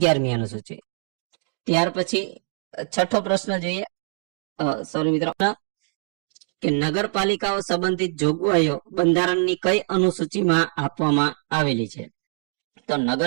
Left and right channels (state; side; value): silent; left; digital silence